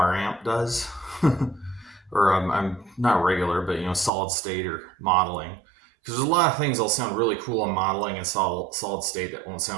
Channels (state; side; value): drops out; left; at 4.1 s